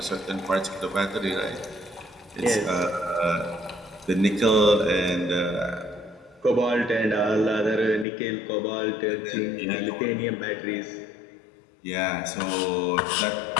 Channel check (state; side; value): drops out; right; at 8.1 s